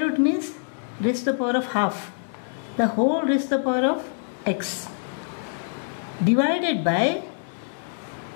means raised to the power of half. The whole raised to the power of x. Divided by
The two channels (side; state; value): right; silent; 62 dB below the other